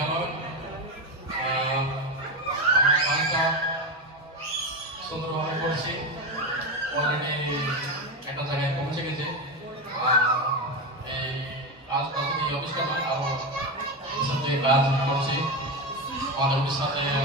আমার কাজটা সুন্দরভাবে করছি, অলরেডি একটা জায়গায় পৌঁছে গেছে। এই কাজটা শুধু এই অফিসটা নয়, আরও সাথে কাজ করছি। আমাদের উড়িষ্যাতে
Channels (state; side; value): normal; both; correlation 0.15